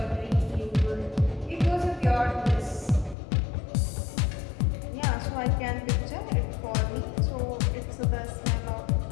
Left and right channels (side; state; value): right; drops out; at 3.2 s